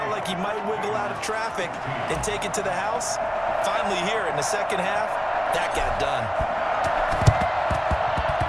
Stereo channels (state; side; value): identical; both; correlation 1.00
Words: like he might wiggle out of traffic and take it to the house. Finally here in the second half, that got done.